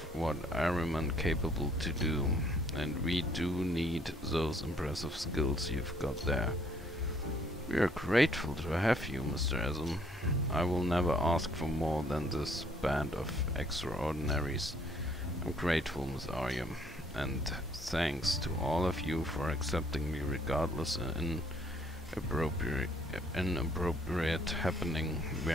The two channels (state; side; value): normal; both; correlation 0.64